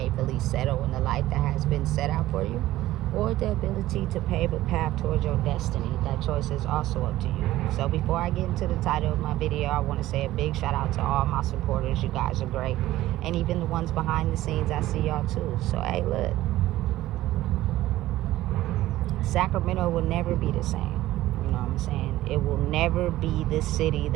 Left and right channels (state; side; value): quieter; left; 15.6 dB